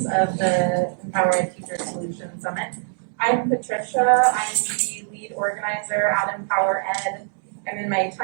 of the Empowered Teacher Solutions Summit. I'm Patricia. I'm the lead organizer at Empower Ed. I'm in my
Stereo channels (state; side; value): silent; left; digital silence